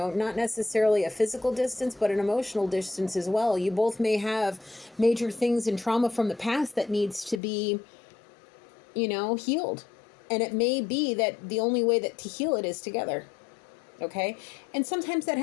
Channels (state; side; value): drops out; right; at 7.4 s